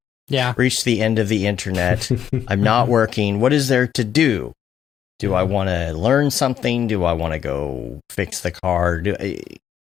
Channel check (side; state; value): right; quieter; 9.5 dB